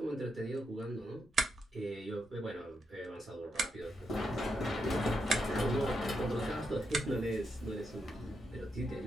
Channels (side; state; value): both; normal; correlation 0.82